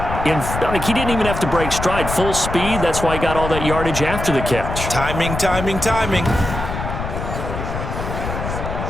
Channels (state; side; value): noise; left; rumble, 5 dB below the sound